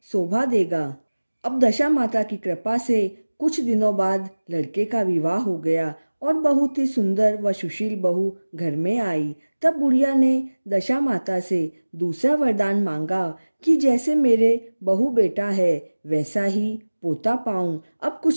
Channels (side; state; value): both; inverted; correlation -1.00